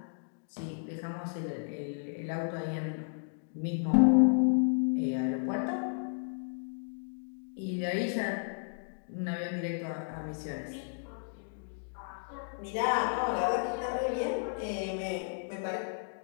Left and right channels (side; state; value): right; silent; digital silence